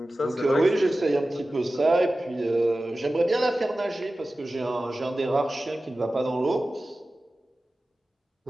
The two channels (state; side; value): normal; both; correlation 0.95